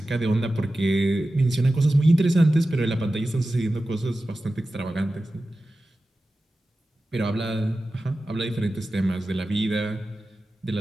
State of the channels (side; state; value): both; normal; correlation 0.94